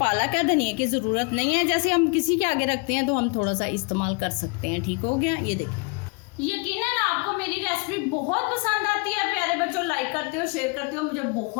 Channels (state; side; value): quieter; right; 32.1 dB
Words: है, धनिया की ज़रूरत नहीं है। जैसे हम किसी के आगे रखते हैं तो हम थोड़ा सा इस्तेमाल कर सकते हैं। ठीक हो गया, ये देखिए यकीनन आपको मेरी रेसिपी बहुत पसंद आती है। प्यारे बच्चों, लाइक करते हो, शेयर करते हो, मुझे